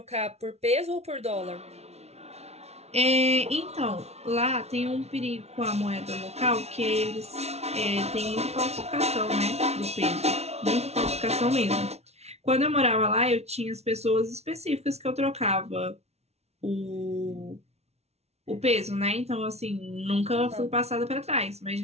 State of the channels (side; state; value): left; late; 0.31 ms